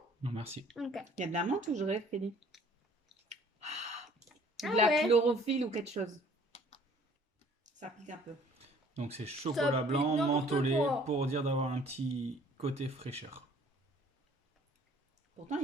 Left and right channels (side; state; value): both; normal; correlation 0.55